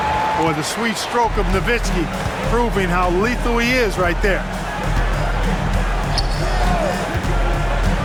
Boy, the sweet stroke of Nowitzki proving how lethal he is right there.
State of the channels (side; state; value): both; identical; correlation 1.00